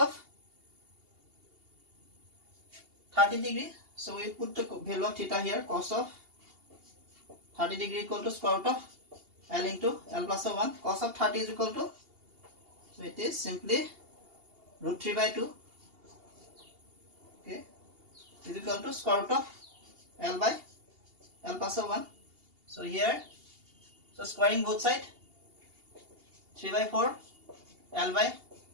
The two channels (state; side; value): late; left; 2.8 ms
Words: 30 degree. So we put the value of theta here. Cos of 30 degree equal to square root of L into L plus of 1. Cos of 30 is equal to, so it is simply root 3 by 2. Okay, is equal to square root of L by L plus of 1. So here, so squaring both sides, 3 by 4 L by